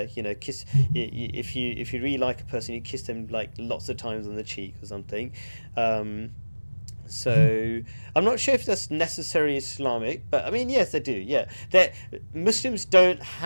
Kiss. If you really like a person, you kiss them like lots of times on the cheek or something. Um, so I'm not sure if that's necessarily Islamic, but I mean, yes, they do. Yeah, that Muslims don't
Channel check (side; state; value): both; inverted; correlation -1.00